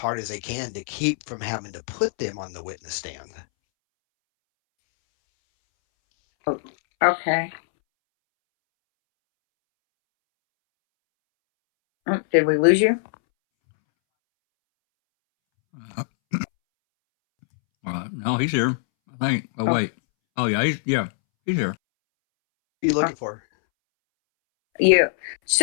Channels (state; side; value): silent; right; 63 dB below the other